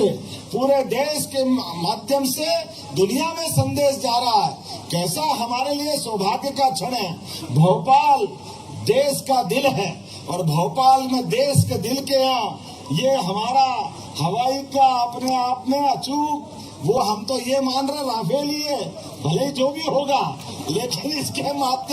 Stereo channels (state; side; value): identical; both; correlation 1.00